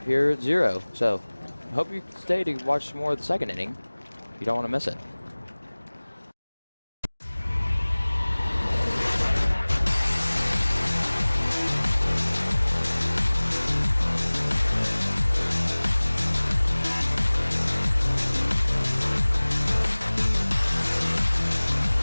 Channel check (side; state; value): both; inverted; correlation -1.00